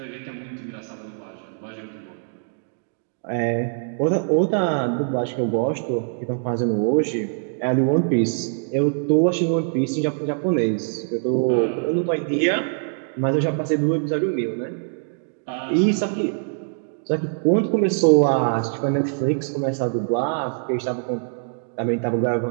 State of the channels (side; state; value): left; silent; digital silence